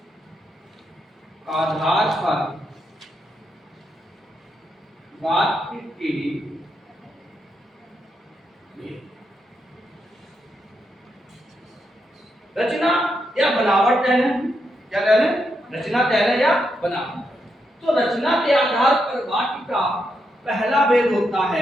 आधार पर वाक्य के रचना या बनावट कह लें, क्या कह लें, रचना कह लें या बनावट। तो रचना के आधार पर वाक्य का पहला भेद होता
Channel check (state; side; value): normal; both; correlation 0.82